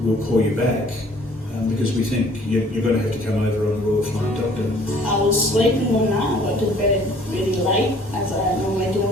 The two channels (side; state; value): both; normal; correlation 0.55